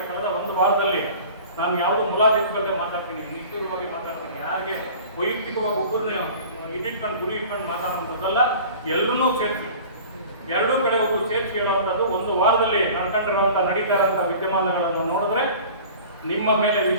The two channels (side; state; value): both; inverted; correlation -0.42